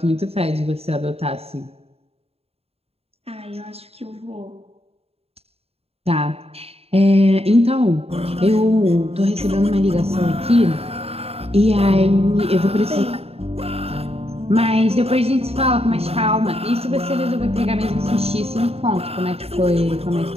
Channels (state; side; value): late; left; 0.29 ms